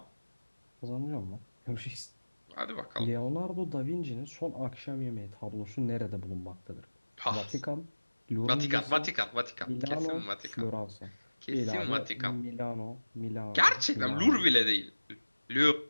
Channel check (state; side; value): inverted; both; correlation -1.00